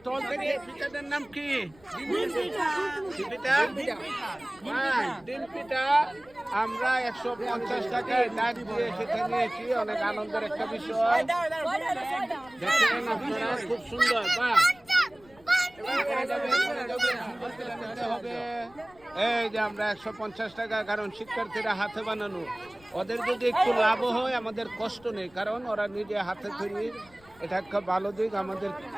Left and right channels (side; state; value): left; noise; rumble, 27 dB below the sound